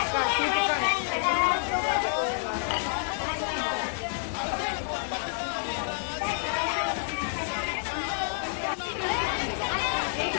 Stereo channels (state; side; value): silent; right; digital silence